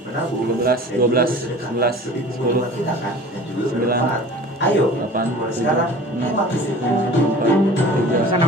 menabung 13, 12, 11, 10, kita kan dan juga 9, ayo 8, mulai sekarang hemat listrik. 4, 3, Pesan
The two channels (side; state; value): both; normal; correlation 0.42